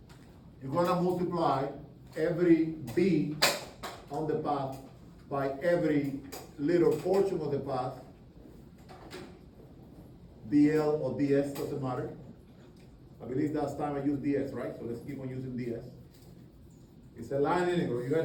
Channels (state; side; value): identical; both; correlation 1.00